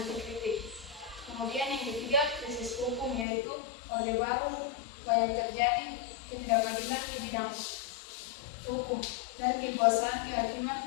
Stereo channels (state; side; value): drops out; right; at 3.2 s